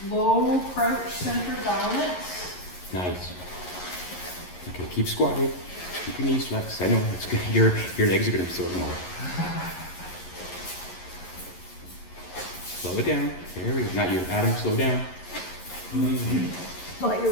low crouch center balance. Nice. Okay, keep squatting. Keep your knees flexed. I know it's good. Your legs are gonna be sore tomorrow. Slow it down. There we go. Not you, Adam. Slow down. Thought you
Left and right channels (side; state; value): right; late; 11 ms